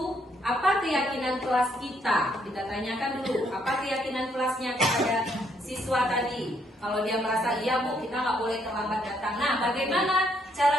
apa keyakinan kelas kita? Kita tanyakan dulu, apa keyakinan kelasnya kepada siswa tadi? Kalau dia merasa, iya bu, kita nggak boleh terlambat datang. Nah, bagaimana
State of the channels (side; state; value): both; normal; correlation 0.71